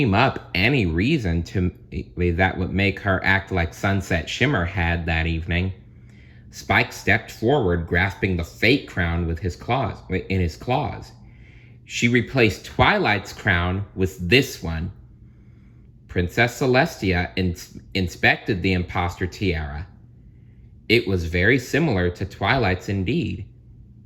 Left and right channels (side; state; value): both; identical; correlation 1.00